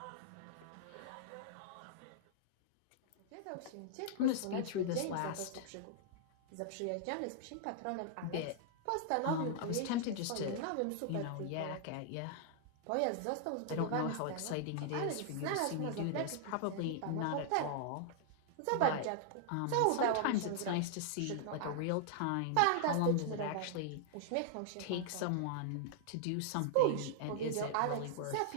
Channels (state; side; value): different; both; correlation -0.01